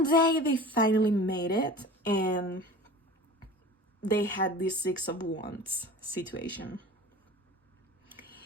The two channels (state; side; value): normal; both; correlation 0.39